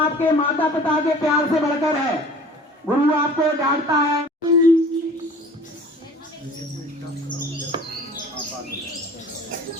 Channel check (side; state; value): both; normal; correlation 0.46